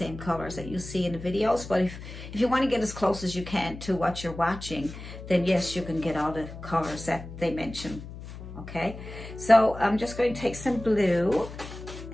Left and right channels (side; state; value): left; noise; hum, 12 dB below the sound